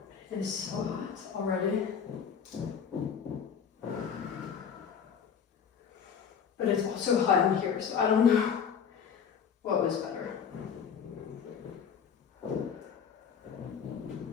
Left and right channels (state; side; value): quieter; right; 7.2 dB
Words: It is so hot already. But it's also hot in here, so I don't know what was better.